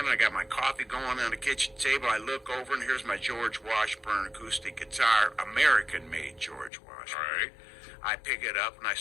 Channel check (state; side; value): drops out; right; at 6.7 s